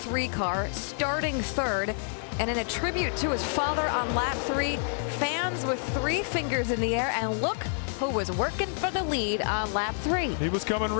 car, starting third. And in a tribute to his father on lap 3, fans with 3 fingers in the air, and look who was working for the lead on lap 3. He was coming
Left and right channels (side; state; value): right; silent; 59 dB below the other